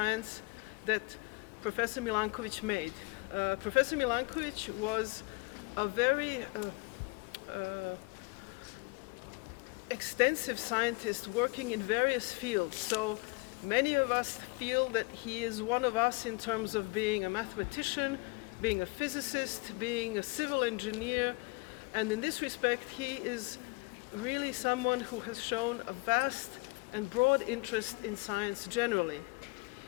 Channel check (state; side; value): quieter; right; 27.8 dB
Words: that Professor Milánković made. Professor Milánković was a very extensive scientist working in various fields. So many of us feel that he is one of us in terms of being a mathematician, being a physicist, being a civil engineer. And in this respect, he is really someone who has shown a vast and broad interest in science generally.